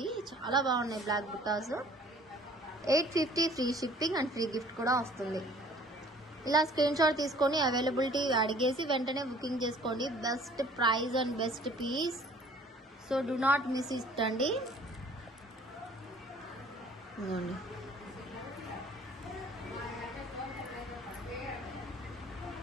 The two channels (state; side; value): normal; both; correlation 0.53